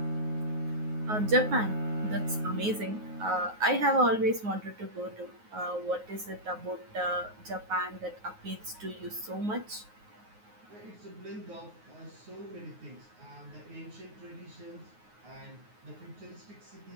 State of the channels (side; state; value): left; late; 9.5 ms